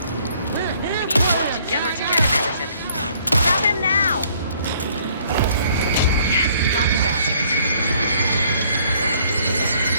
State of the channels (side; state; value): both; inverted; correlation -0.62